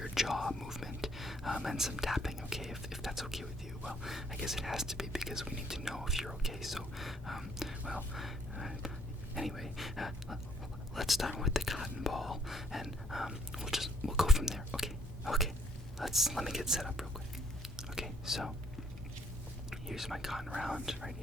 jaw movement and some tapping. Okay, if that's okay with you. Well, I guess it has to be, because we need to know if you're okay. So, anyway, let's start with the cotton ball, and we'll go from there. Okay. Let me get set up real quick. Okay, so here's my cotton round right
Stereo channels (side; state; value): both; normal; correlation 0.67